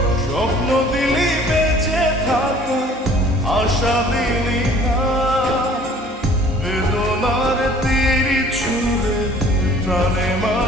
স্বপ্ন দিলি বেঁচে থাকা, আশা দিলি না, বেদনার তীর ছুঁড়ে প্রাণে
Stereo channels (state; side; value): normal; both; correlation 0.52